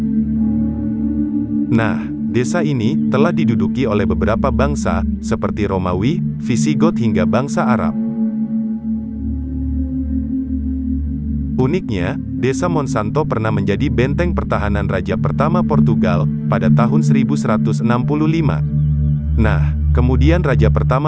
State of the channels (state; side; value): identical; both; correlation 1.00